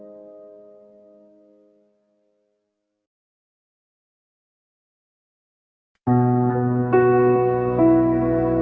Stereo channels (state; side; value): identical; both; correlation 1.00